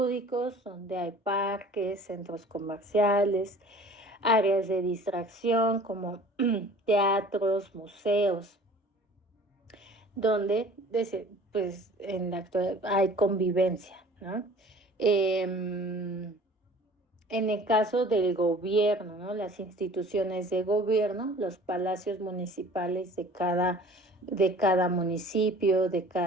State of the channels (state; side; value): normal; both; correlation 0.46